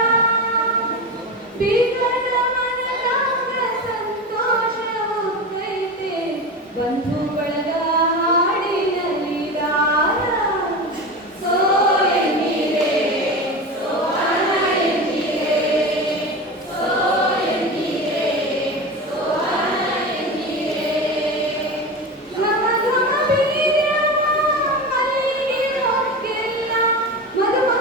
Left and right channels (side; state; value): both; normal; correlation 0.25